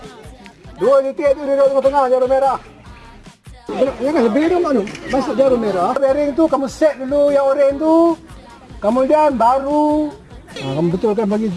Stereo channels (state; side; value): identical; both; correlation 1.00